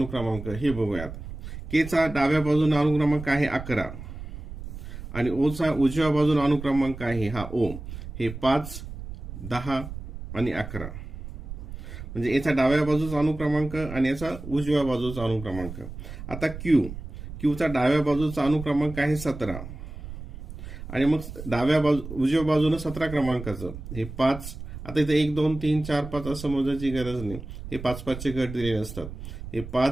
हे बघूयात। के चा डाव्या बाजूने अनुक्रमांक आहे 11 आणि ओ चा उजव्या बाजूने अनुक्रमांक आहे हा ओ, हे 5 10 आणि 11, म्हणजे याचा डाव्या बाजूचा अनुक्रमांक आणि याचा उजव्या बाजूचा अनुक्रमांक। आता क्यू चा डाव्या बाजूचा अनुक्रमांक आहे 17 आणि मग उजव्या बाजूने 17 क्रमांकाचं हे 5। आता इथे 1 2 3 4 5 असं मोजायची गरज नाही, हे 5-5 चे गट दिलेले असतात। हे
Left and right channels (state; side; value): noise; right; rumble, 10 dB below the sound